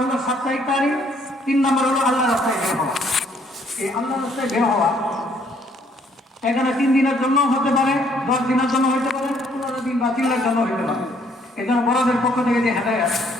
হলো সাপ্তাহিক তালিম, 3 নম্বর হলো আল্লাহর রাস্তায় বের হওয়া। এই আল্লাহর রাস্তায় বের হওয়া এখানে 3 দিনের জন্য হতে পারে, 10 দিনের জন্য হতে পারে, 15 দিন বা 3 দিনের জন্য হতে পারে। এই জন্য বড়দের পক্ষ থেকে যে হেদায়েত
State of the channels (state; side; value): normal; both; correlation 0.65